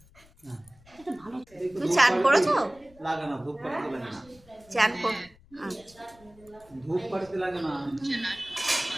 তুমি চান করেছো? লাগে না ধূপ পাড়িতে লাগে না চান কর ধূপ পাড়িতে লাগে না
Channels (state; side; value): noise; left; rumble, 27 dB below the sound